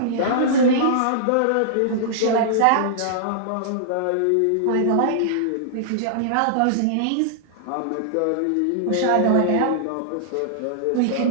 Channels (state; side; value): different; both; correlation -0.01